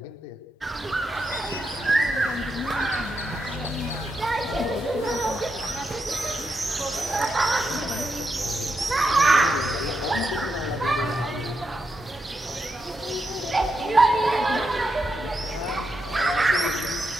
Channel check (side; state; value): both; normal; correlation 0.84